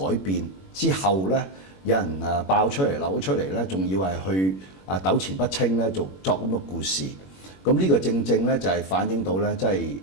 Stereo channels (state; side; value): late; right; 21 ms